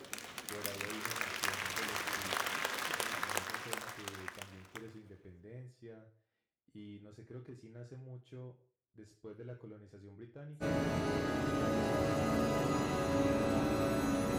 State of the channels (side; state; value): both; identical; correlation 1.00